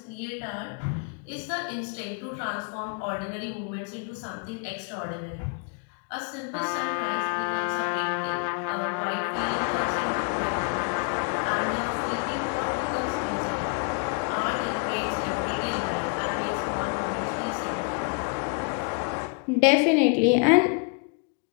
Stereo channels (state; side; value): quieter; right; 36.3 dB